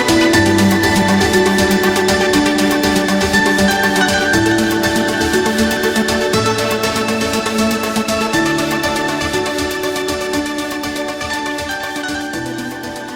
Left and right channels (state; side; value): identical; both; correlation 1.00